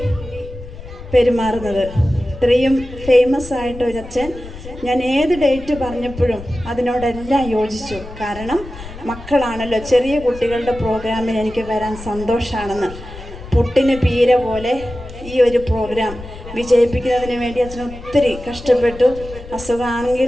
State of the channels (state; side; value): noise; left; rumble, 14 dB below the sound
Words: പെരുമാറുന്നത്. ഇത്രയും ഫേമസ് ആയിട്ട് ഒരു അച്ഛൻ. ഞാൻ ഏത് ഡേറ്റ് പറഞ്ഞപ്പോഴും അതിനോടെല്ലാം യോജിച്ചു. കാരണം മക്കളാണല്ലോ, ചെറിയ കുട്ടികളുടെ പ്രോഗ്രാമിന് എനിക്ക് വരാൻ സന്തോഷമാണെന്ന്. പൊട്ടിന് പീര പോലെ ഈ ഒരു പ്രോഗ്രാം വിജയിപ്പിക്കുന്നതിന് വേണ്ടി അച്ഛൻ ഒത്തിരി കഷ്ടപ്പെട്ടു.